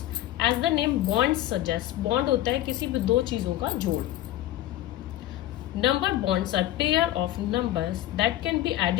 as the name bond suggest, bond होता है किसी भी दो चीजों का जोड़। Number bonds are pair of numbers that can be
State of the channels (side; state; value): right; quieter; 14.0 dB